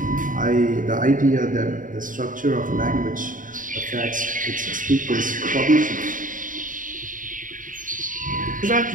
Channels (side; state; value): left; late; 0.39 ms